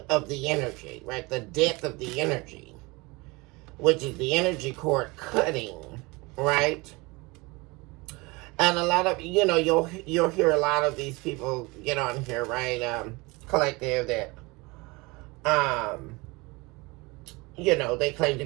of the energy, right? The death of the energy, which is the energy cord cutting, right? And a lot of, you'll hear a lot of these people get on here, right? Collective that, they claim to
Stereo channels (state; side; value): quieter; left; 24.7 dB